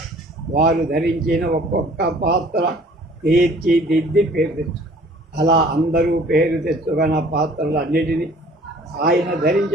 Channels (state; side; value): normal; both; correlation 0.53